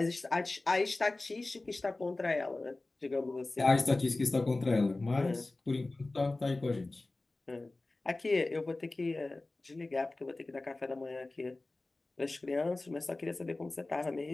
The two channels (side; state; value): right; quieter; 3.1 dB